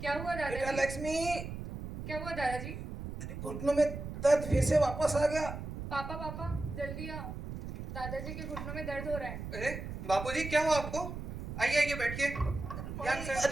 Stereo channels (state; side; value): noise; right; rumble, 7 dB below the sound